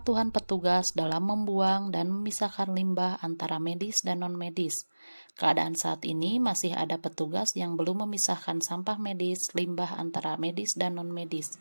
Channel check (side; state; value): both; inverted; correlation -1.00